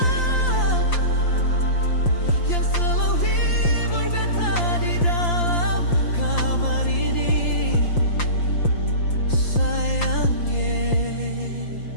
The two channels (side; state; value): right; late; 5.8 ms